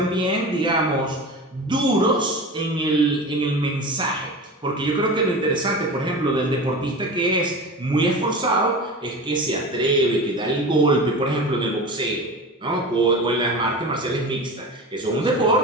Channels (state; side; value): normal; both; correlation 0.31